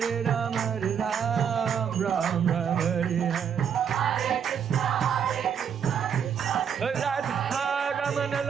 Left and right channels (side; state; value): left; quieter; 7.8 dB